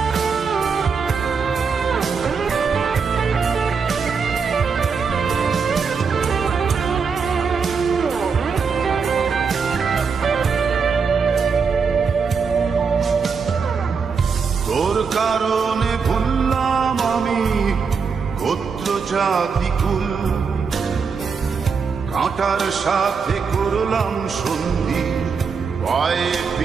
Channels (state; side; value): quieter; left; 5.6 dB